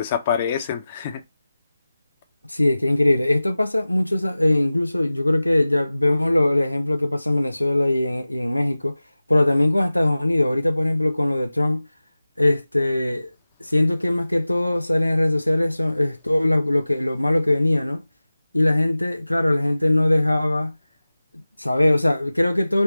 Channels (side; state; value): both; inverted; correlation -0.97